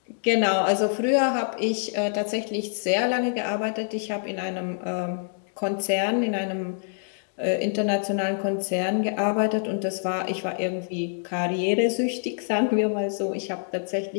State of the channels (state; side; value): silent; right; digital silence